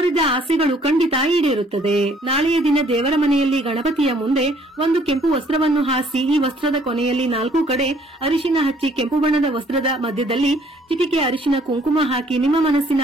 ಆಸೆಗಳು ಖಂಡಿತ ಈಡೇರುತ್ತದೆ. ನಾಳೆಯ ದಿನ ದೇವರ ಮನೆಯಲ್ಲಿ ಗಣಪತಿಯ ಮುಂದೆ ಒಂದು ಕೆಂಪು ವಸ್ತ್ರವನ್ನು ಹಾಸಿ ಈ ವಸ್ತ್ರದ ಕೊನೆಯಲ್ಲಿ 4 ಕಡೆ ಅರಿಶಿನ ಹಚ್ಚಿ ಕೆಂಪು ಬಣ್ಣದ ವಸ್ತ್ರದ ಮಧ್ಯದಲ್ಲಿ ಚಿಟಿಕೆ ಅರಿಶಿನ ಕುಂಕುಮ ಹಾಕಿ ನಿಮ್ಮ ಮನಸ್ಸಿನ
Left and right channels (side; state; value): both; normal; correlation 0.61